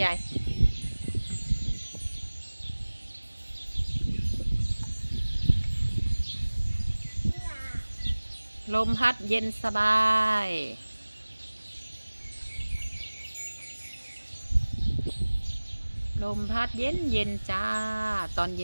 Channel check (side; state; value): both; inverted; correlation -1.00